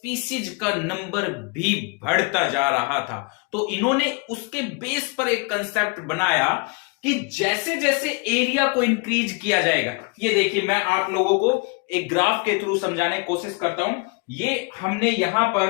का नंबर भी बढ़ता जा रहा था. तो इन्होंने उसके बेस पर एक कंसेप्ट बनाया कि जैसे जैसे एरिया को इंक्रीज किया जाएगा. ये देखिए, मैं आप लोगों को एक ग्राफ के थ्रू समझाने की कोशिश करता हूं. ये हमने यहां पर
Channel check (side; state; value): right; quieter; 31.4 dB